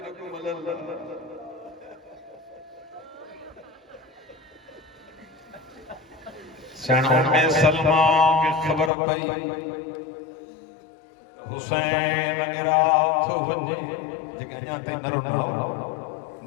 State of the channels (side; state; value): right; drops out; at 8.9 s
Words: अल्लाह सणों में सलमा की खबर पई हुसैन गिराथ वञे जेके अञा ताईं न रुनो